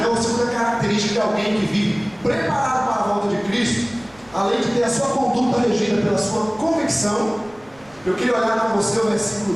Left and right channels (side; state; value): right; noise; rumble, 28 dB below the sound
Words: ou segunda característica de alguém que vive preparado para a volta de Cristo, além de ter a sua conduta regida pela sua convicção, eu queria olhar para você o